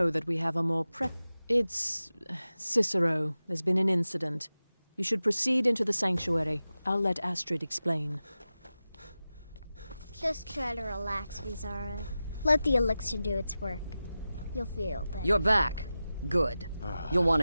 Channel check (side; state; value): both; inverted; correlation -0.94